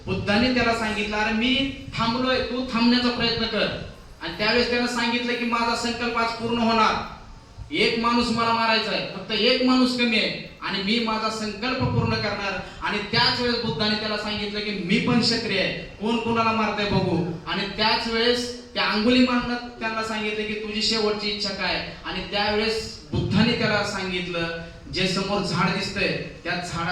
बुद्धाने त्याला सांगितलं, अरे मी थांबलोय, तू थांबण्याचा प्रयत्न कर. आणि त्यावेळेस त्यानं सांगितलं की माझा संकल्प आज पूर्ण होणार. एक माणूस मला मारायचा आहे, फक्त एक माणूस कमी आहे, आणि मी माझा संकल्प पूर्ण करणार. आणि त्याच वेळेस बुद्धाने त्याला सांगितलं की मी पण क्षत्रिय आहे, कोण कोणाला मारतंय बघू. आणि त्याच वेळेस त्या अंगुलीमालनं त्यांना सांगितलं की तुझी शेवटची इच्छा काय. आणि त्यावेळेस बुद्धाने त्याला सांगितलं, जे समोर झाड दिसतंय त्या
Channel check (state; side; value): identical; both; correlation 1.00